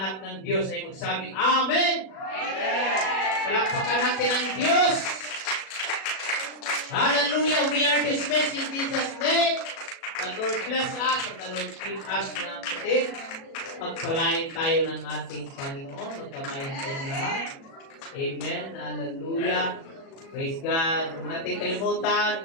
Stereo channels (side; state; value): right; late; 37 ms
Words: ng Diyos ay magsabing, Amen! Palakpakan natin ang Diyos. Hallelujah! We are dismissed in Jesus' name. The Lord bless us and the Lord keep us, mga kapatid. Pagpalain tayo ng ating Panginoon. Magkamayan tayong lahat. Amen. Hallelujah. Praise God. Huwag natin kalimutan,